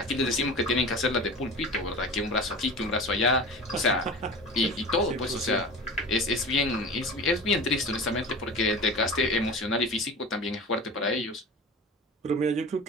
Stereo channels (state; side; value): normal; both; correlation 0.34